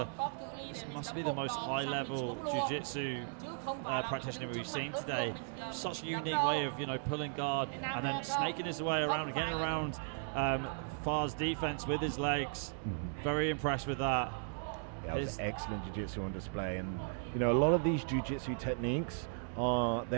must be the most high-level jiu-jitsu practitioner we've seen today. Such a unique way of, pulling guard and then snaking his way around and getting around Far's defense with his legs. Very impressed with that. Yeah, it was excellent jiu-jitsu on display. And, a lot of these jiu-jitsu techniques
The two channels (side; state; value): left; silent; digital silence